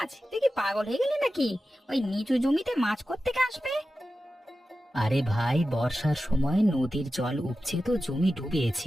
তুই কি পাগল হয়ে গেলি নাকি? ওই নিচু জমিতে মাছ কোত্থেকে আসবে? আরে ভাই, বর্ষার সময় নদীর জল উপচে তো জমি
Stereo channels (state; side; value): normal; both; correlation 0.93